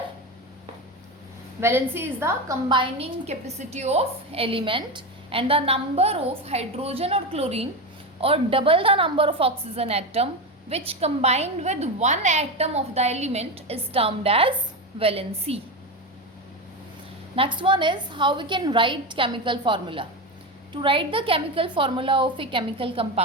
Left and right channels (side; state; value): both; normal; correlation 0.17